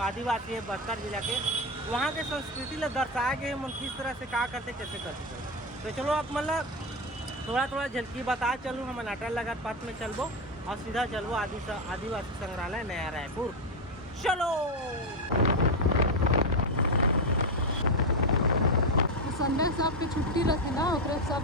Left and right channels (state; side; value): normal; both; correlation 0.09